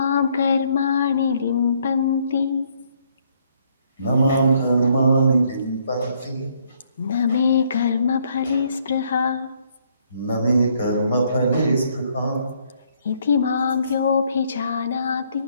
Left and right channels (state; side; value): inverted; both; correlation -0.68